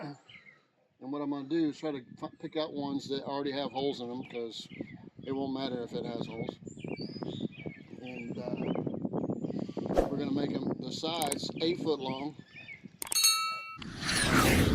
what I'm going to do is try to pick out ones that already have holes in them, because it won't matter if it has holes. And we're going to make them the sides 8 foot long,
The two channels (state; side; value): identical; both; correlation 1.00